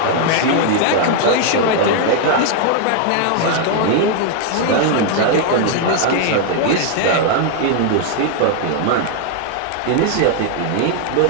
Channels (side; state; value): both; different; correlation 0.00